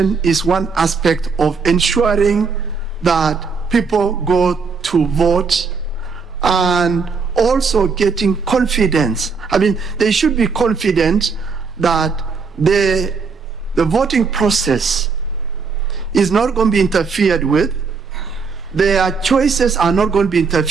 is one aspect of ensuring that people go to vote and also getting confidence. They should be confident that the voting process is not going to be interfered with, their choices are not going to be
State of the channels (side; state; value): left; quieter; 5.1 dB